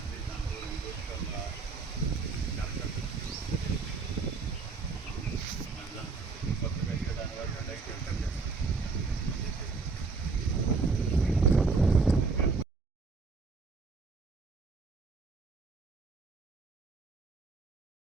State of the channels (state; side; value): quieter; left; 4.5 dB